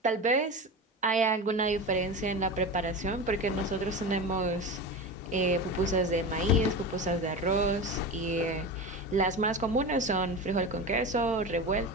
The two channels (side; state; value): both; normal; correlation 0.26